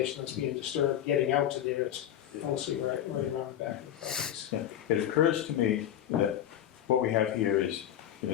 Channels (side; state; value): right; quieter; 10.8 dB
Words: that's being disturbed getting out to there. It's mostly right around the back of the properties. Yeah. It occurs to me that what we have here is in